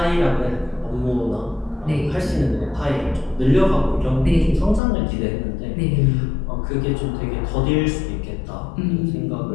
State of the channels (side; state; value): right; drops out; at 4.8 s